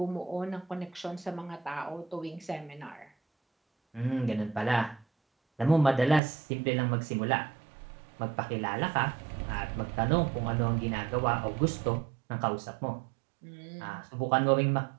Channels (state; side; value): drops out; left; at 6.2 s